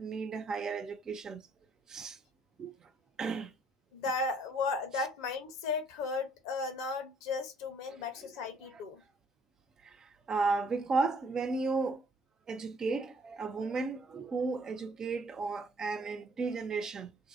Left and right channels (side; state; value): both; normal; correlation 0.62